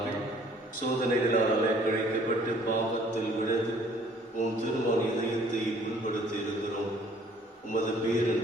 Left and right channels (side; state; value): both; normal; correlation 0.57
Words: சோதனைகளால் அலைக்கழிக்கப்பட்டு பாவத்தில் விழுந்து உம் திருமண இதயத்தை புண்படுத்தி இருக்கிறோம். உமது